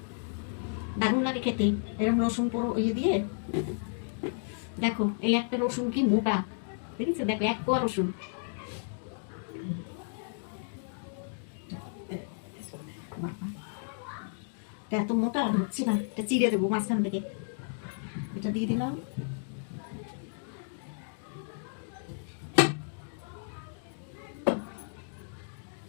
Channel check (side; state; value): right; silent; digital silence